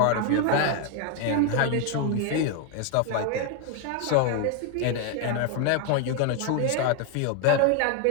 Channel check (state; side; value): different; both; correlation 0.01